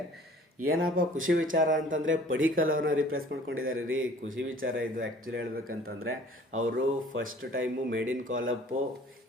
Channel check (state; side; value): normal; both; correlation 0.51